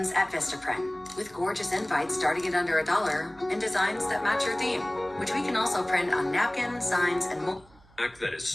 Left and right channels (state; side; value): noise; right; hum, 27 dB below the sound